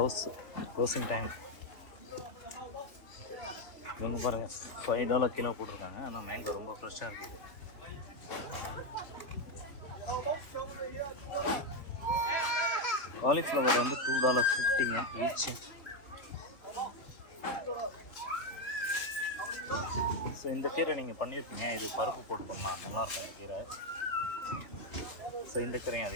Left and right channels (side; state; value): right; late; 3.1 ms